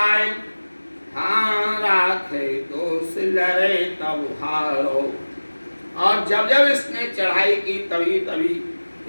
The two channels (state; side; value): inverted; both; correlation -1.00